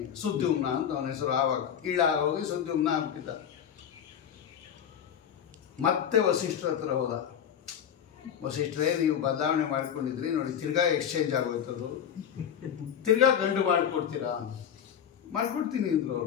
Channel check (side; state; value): right; quieter; 8.8 dB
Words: ಸುದ್ಯುಮ್ನ ಅಂತ ಅವನ ಹೆಸರು. ಆವಾಗ ಹೋಗಿ ಸುದ್ಯುಮ್ನ ಆಗ್ಬಿಟ್ಟಿದ್ದ. ಮತ್ತೆ ವಸಿಷ್ಠರ ಹತ್ರ ಹೋದ. ವಸಿಷ್ಠರೇ, ನೀವು ಬದಲಾವಣೆ ಮಾಡ್ಕೊಂಡಿದ್ರಿ ನೋಡಿ, ತಿರ್ಗಾ ಎಕ್ಸ್ಚೇಂಜ್ ಆಗೋಯ್ತದು, ತಿರ್ಗಾ ಗಂಡು ಮಾಡಿಕೊಡ್ತೀರಾ? ಮಾಡಿಕೊಡ್ತೀನಿ ಅಂದರು